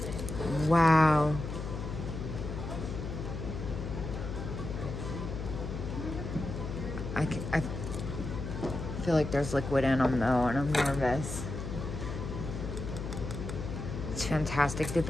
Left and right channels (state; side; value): noise; left; hum, 6 dB below the sound